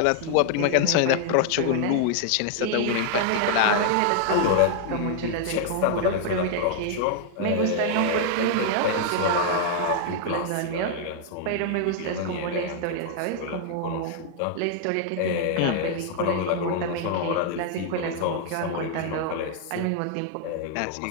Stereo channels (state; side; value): different; both; correlation -0.01